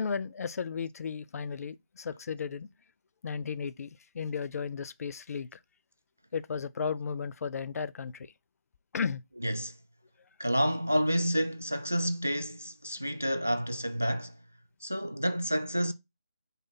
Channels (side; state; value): both; inverted; correlation -0.86